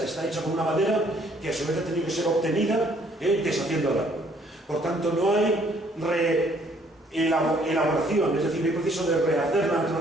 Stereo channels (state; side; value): normal; both; correlation 0.63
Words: está hecho con una madera que a su vez ha tenido que ser obtenida deshaciendo el árbol. Por tanto, no hay elaboración, es decir, no hay proceso de rehacer la